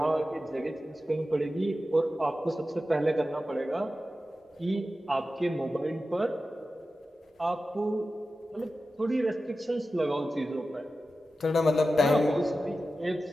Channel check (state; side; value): normal; both; correlation 0.93